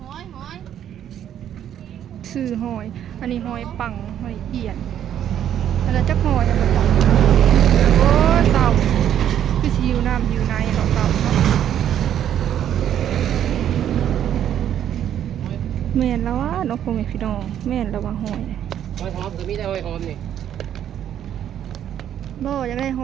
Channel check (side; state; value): left; quieter; 10.3 dB